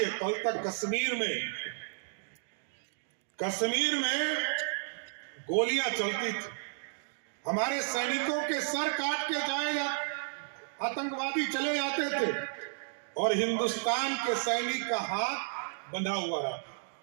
कल तक कश्मीर में गोलियां चलती थी, हमारे सैनिकों के सर काट के जाए आतंकवादी चले जाते थे और हिंदुस्तान के सैनिक का हाथ बंधा हुआ रहा।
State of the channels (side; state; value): left; silent; digital silence